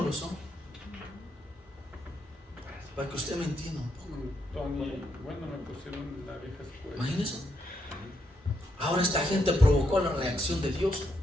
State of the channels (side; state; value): both; normal; correlation 0.79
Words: lo son. Para que usted me entienda un poco. Bueno, me pusieron la vieja escuela. Imagínense. Ahora esta gente provocó la reacción de Dios.